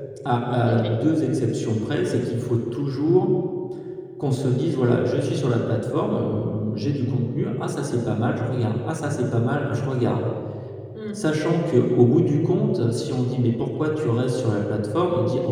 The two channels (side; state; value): both; identical; correlation 1.00